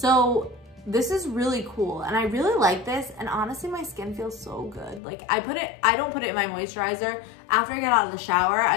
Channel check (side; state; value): right; drops out; at 5.0 s